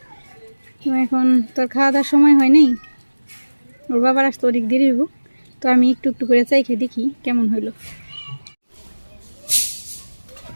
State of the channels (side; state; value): both; inverted; correlation -1.00